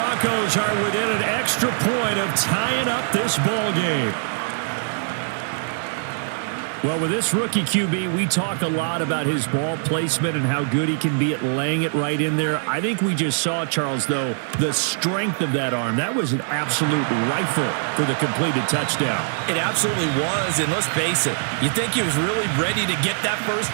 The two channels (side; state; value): left; silent; digital silence